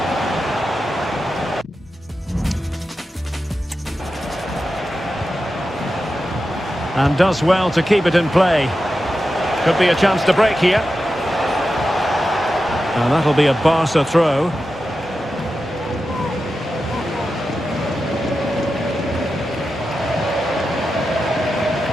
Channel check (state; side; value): normal; both; correlation 0.91